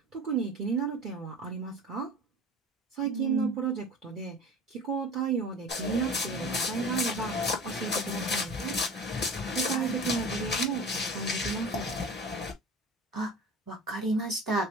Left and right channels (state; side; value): normal; both; correlation 0.37